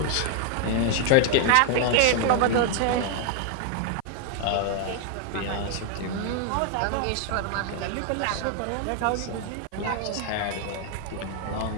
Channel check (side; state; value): both; different; correlation 0.00